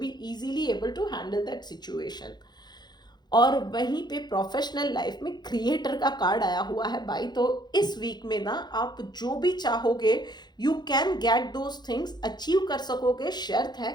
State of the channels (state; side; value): late; right; 0.21 ms